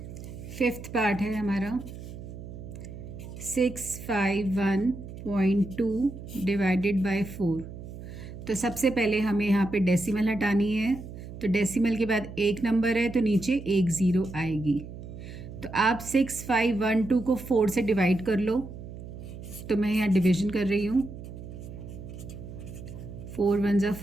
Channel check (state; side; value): noise; right; hum, 12 dB below the sound